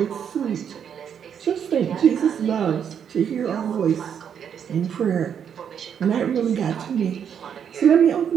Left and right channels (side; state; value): left; quieter; 8.1 dB